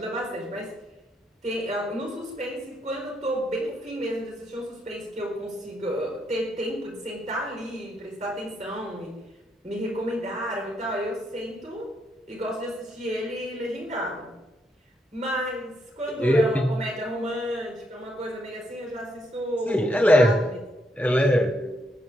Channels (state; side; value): normal; both; correlation 0.76